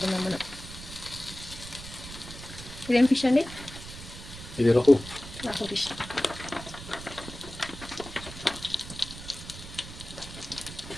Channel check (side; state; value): right; noise; rumble, 13 dB below the sound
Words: మనం. ఇదేం ఫిష్ అండి? ఇది రోహు ఫిష్.